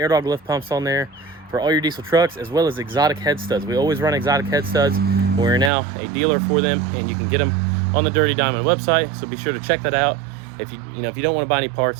dog lift pumps on there for all your diesel trucks, as well as exotic head studs. We always run exotic head studs. We're now a dealer for them, and you can get them on the Dirty Diamond website, so be sure to check that out. If you don't want to buy any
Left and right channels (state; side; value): drops out; left; at 5.7 s